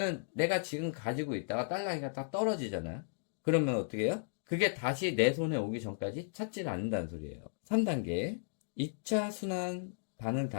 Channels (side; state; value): right; silent; digital silence